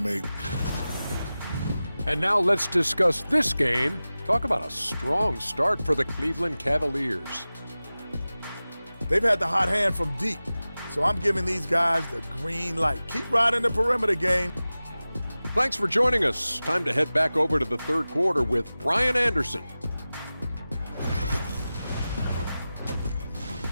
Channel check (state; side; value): inverted; both; correlation -0.96